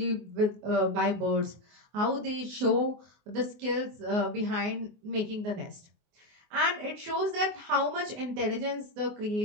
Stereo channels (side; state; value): left; late; 24 ms